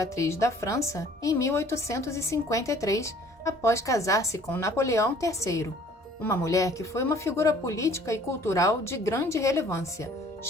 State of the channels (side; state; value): both; normal; correlation 0.55